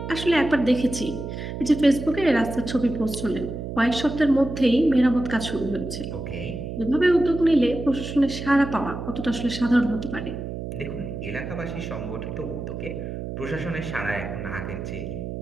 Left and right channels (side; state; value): right; noise; hum, 7 dB below the sound